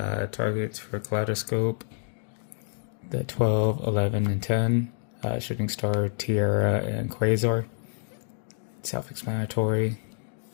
Targets for Kaleidoscope, the 12, 11, and 10. Shooting Star, Tiara, and Quasar. Self-explanatory.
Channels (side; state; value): right; silent; digital silence